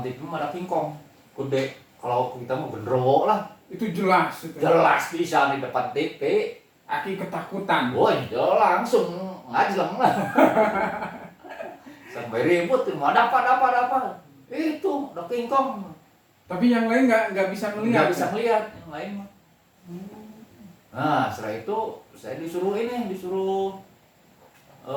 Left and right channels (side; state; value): both; identical; correlation 1.00